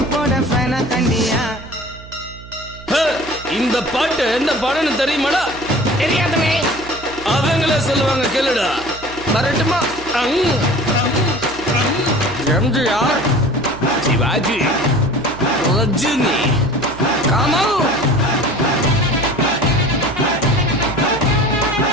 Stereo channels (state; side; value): noise; right; hum, 17 dB below the sound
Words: போட ஃபேனா தண்டியா இந்த பாட்டு என்ன பாடன்னு தெரியுமாடா? தெரியாதவே அவங்களே சொல்லுவாங்க கேளுடா. வரட்டுமா? எம்ஜிஆர், சிவாஜி, ரஜினி, கமல்.